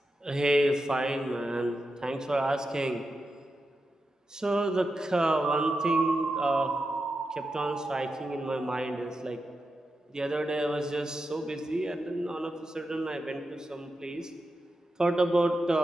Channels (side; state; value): both; normal; correlation 0.89